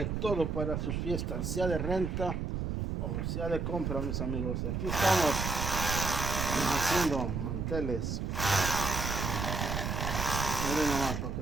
todo para sus fiestas, sea de renta o sea de compra, mis amigos. Aquí estamos haciendo manteles. Miren nomás para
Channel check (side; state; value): right; noise; rumble, 2 dB below the sound